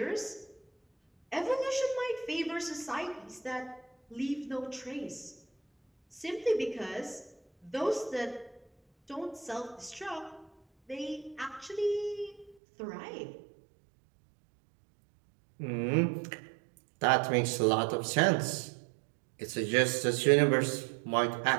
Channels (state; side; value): drops out; left; at 12.6 s